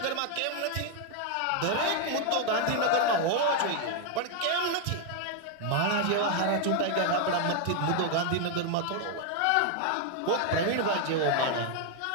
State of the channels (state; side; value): different; both; correlation 0.00